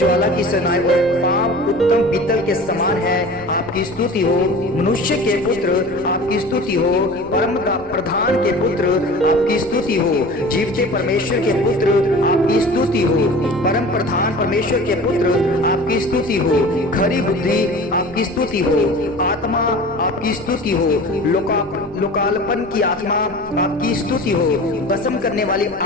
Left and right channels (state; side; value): noise; left; rumble, 23 dB below the sound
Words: की सनाई और पांव उत्तम पीतल के समान है आपकी स्तुति हो। मनुष्य के पुत्र आपकी स्तुति हो। परम प्रधान के पुत्र आपकी स्तुति हो। जीवते परमेश्वर के पुत्र आपकी स्तुति हो। परम प्रधान परमेश्वर के पुत्र आपकी स्तुति हो। खरी बुद्धि आपकी स्तुति हो। आत्मा आपकी स्तुति हो। लोकालपन की आत्मा आपकी स्तुति हो। भस्म करने वाली